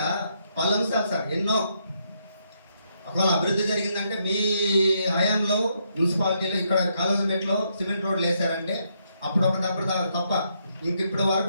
పలు అంశాలు సార్ ఎన్నో. ఒకవేళ అభివృద్ధి జరిగిందంటే మీ హయాంలో మున్సిపాలిటీలో ఇక్కడ కాలేజీమెట్లో సిమెంట్ రోడ్లు వేసారంటే అప్పుడు తప్ప ఇంకిప్పటి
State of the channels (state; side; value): inverted; both; correlation -0.76